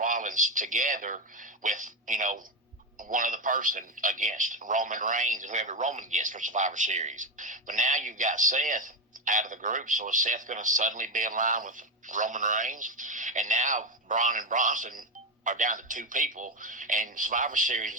together with one other person against Roman Reigns and whoever Roman gets for Survivor Series. But now you've got Seth out of the group, so is Seth going to suddenly be in line with Roman Reigns? And now Braun and Bronson are down to two people, and Survivor Series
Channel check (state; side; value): normal; both; correlation 0.13